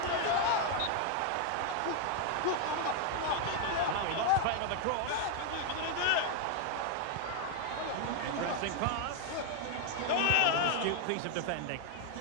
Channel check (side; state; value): both; different; correlation 0.01